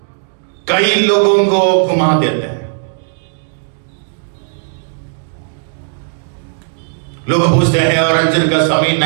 कई लोगों को घुमा देते हैं। लोग पूछते हैं और अंजीर का समय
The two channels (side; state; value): left; silent; digital silence